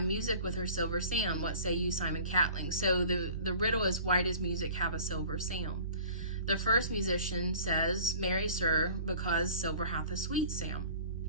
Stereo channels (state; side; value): inverted; both; correlation -0.46